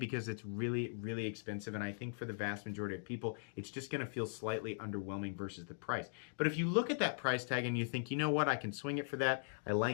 it's really, really expensive, and I think for the vast majority of people, it's just going to feel slightly underwhelming versus the price. But if you look at that price tag and you think, you know what, I can swing it for that, I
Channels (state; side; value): silent; right; digital silence